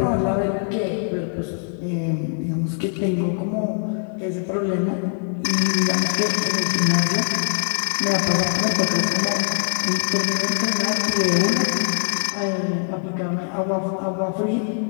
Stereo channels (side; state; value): right; silent; 64 dB below the other